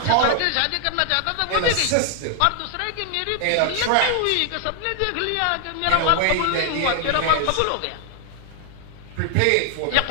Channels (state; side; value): different; both; correlation 0.00